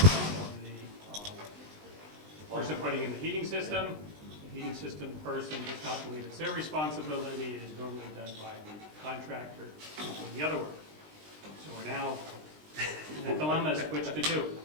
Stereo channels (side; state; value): left; late; 20 ms